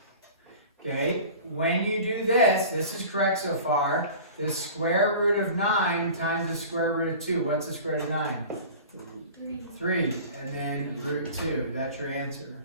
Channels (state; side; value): inverted; both; correlation -0.40